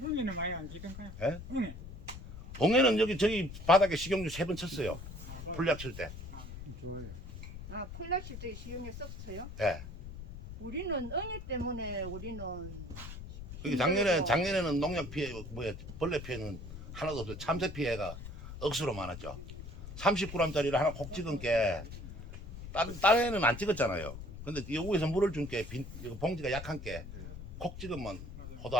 형님은 많이 안 지던가요? 예? 형님. 옹해는 여기 저기 바닥에 식용유 3번 쳤어요. 풀약 칠 때. 좋아요. 아, 콜라실 적에 식용유 썼어요? 예. 우리는 응애 때문에 우리는 그게 작년에는 농약 피해 벌레 피해는 하나도 없어요. 참새 피해가 억수로 많았죠. 30g짜리를 하나 콕 찍은 게 다른 애는 안 찍었잖아요. 근데 여기에서 물을 준 게 봉지가 약한 게 콕 찍으면 포도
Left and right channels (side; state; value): left; noise; rumble, 11 dB below the sound